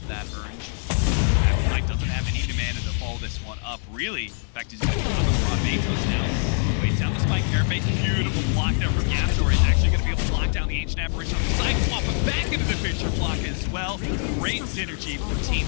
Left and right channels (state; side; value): silent; right; 58 dB below the other